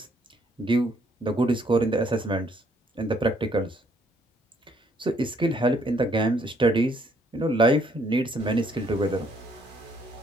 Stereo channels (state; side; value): normal; both; correlation 0.67